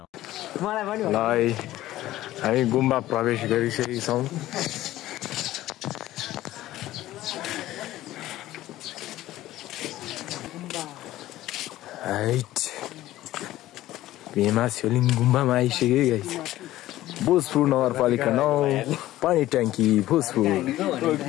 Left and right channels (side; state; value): right; quieter; 15.2 dB